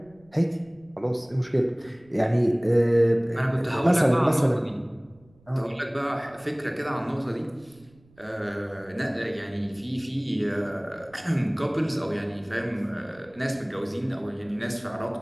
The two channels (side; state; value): right; noise; rumble, 29 dB below the sound